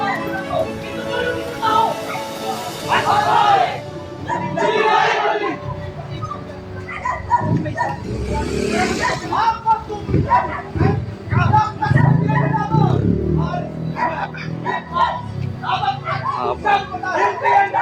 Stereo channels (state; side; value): identical; both; correlation 1.00